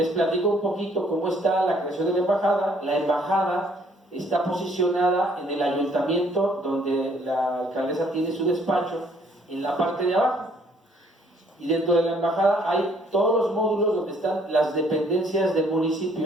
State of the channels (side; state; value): both; normal; correlation 0.63